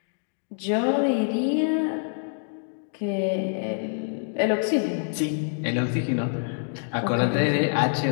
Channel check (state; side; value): silent; right; digital silence